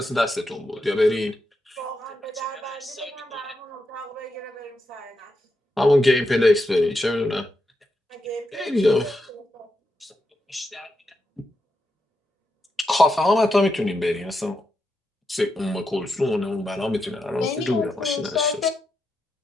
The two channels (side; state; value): both; normal; correlation 0.85